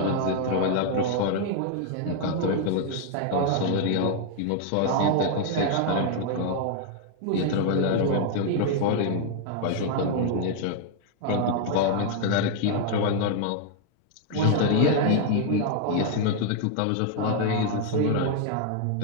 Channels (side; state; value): both; different; correlation 0.00